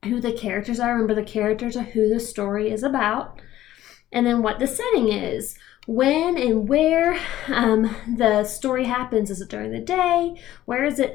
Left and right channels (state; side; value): quieter; right; 13.8 dB